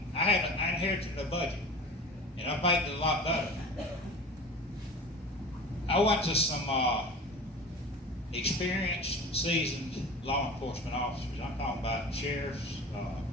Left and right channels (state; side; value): normal; both; correlation 0.36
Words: I inherited a budget, and I've made it a lot better. I went to some experienced, seasoned law enforcement officers. I'm talking about sheriffs,